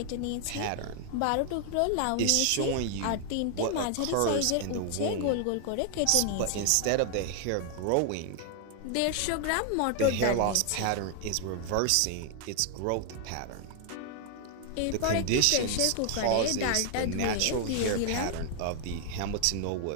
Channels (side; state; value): both; different; correlation 0.00